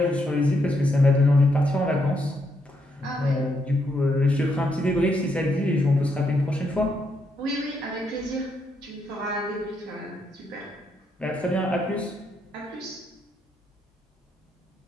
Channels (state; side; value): normal; both; correlation 0.78